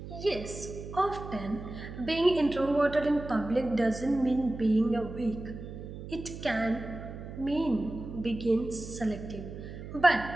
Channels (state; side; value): noise; right; hum, 11 dB below the sound